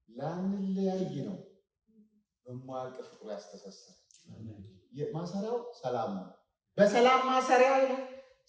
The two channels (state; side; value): identical; both; correlation 1.00